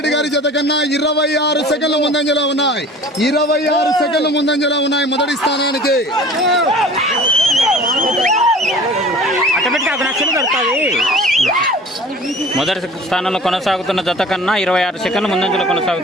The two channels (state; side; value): normal; both; correlation 0.44